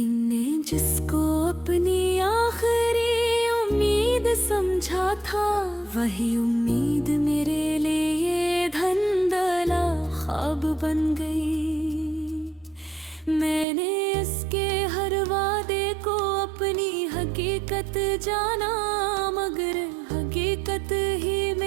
ने जिसको अपनी आखिरी उम्मीद समझा था, वही उम्मीद मेरे लिए धंधला ख्वाब बन गई। मैंने इसके हर वादे को अपनी हकीकत जाना, मगर हकीकत ही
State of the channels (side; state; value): left; drops out; at 13.7 s